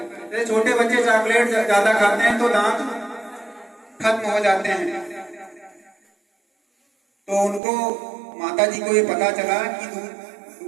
जैसे छोटे बच्चे चॉकलेट ज्यादा खाते हैं तो दांत खत्म हो जाते हैं। तो उनको माता जी को ये पता चला कि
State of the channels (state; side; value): drops out; left; at 7.6 s